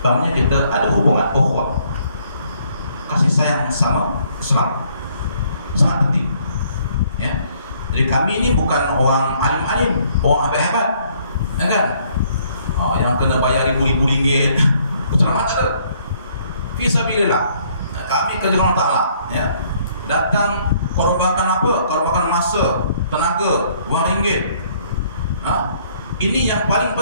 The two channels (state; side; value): inverted; both; correlation -0.64